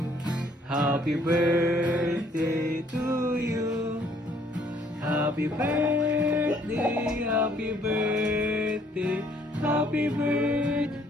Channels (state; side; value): normal; both; correlation 0.63